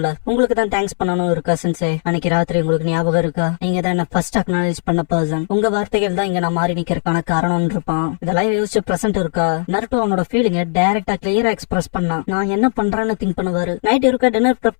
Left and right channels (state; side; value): silent; right; 68 dB below the other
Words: உங்களுக்கு தான் தேங்க்ஸ் பண்ணணும் இருக்கா சென்சே, அன்னைக்கு ராத்திரி உங்களுக்கு ஞாபகம் இருக்கா, நீங்க தான் என்ன ஃபர்ஸ்ட் அக்னாலேஜ் பண்ண பர்சன், உங்க வார்த்தைகள் தான் இங்க நான் மாறி நிக்கிறதுக்கான காரணம் இருப்பான். இதெல்லாம் யோசிச்சு பிரசன்ட் இருக்கா நருட்டோ அவனோட ஃபீலிங்க டைரக்டா கிளியரா எக்ஸ்பிரஸ் பண்ணான். நான் என்ன பண்றேன்னு திங்க் பண்ணுவாரு. நைட் இருக்க டின்னர் ப்ரெப்